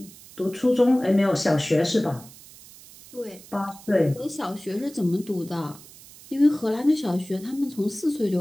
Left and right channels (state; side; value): noise; right; hiss, 20 dB below the sound